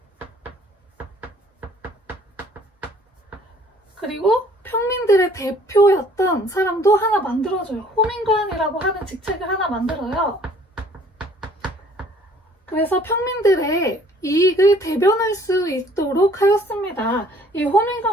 그리고 평민들의 대표였던 사람도 하나 만들어줘요. 호민관이라고 하는 직책을 하나 만들어요. 그래서 평민들의 이익을 대변할 수 있도록 하였습니다. 이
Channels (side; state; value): both; normal; correlation 0.57